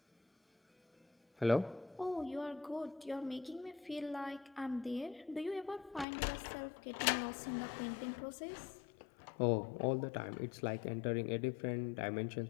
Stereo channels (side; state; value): right; drops out; at 6.1 s